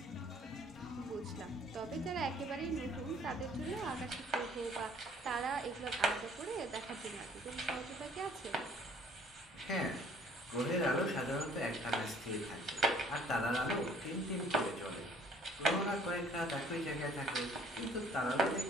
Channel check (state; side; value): normal; both; correlation 0.57